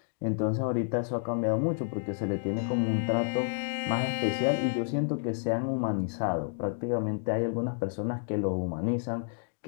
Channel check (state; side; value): silent; right; digital silence